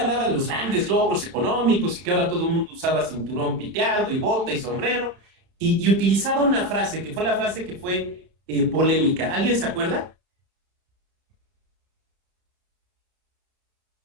de los grandes logros económicos y que ahora todo el mundo usaba cinturón piteado y bota y sombrero y utilizaba una frase que fue la frase que fue polémica. ¿Alguien se acuerda?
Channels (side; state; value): left; late; 32 ms